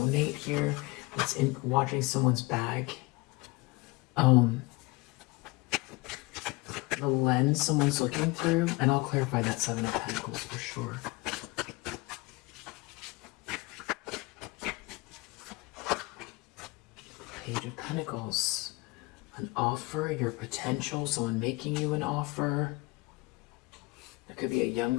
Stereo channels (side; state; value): right; quieter; 23.9 dB